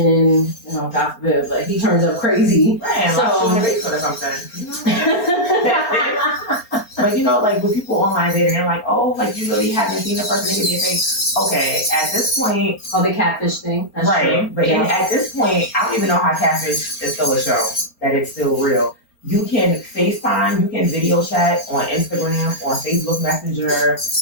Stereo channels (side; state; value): right; late; 4.4 ms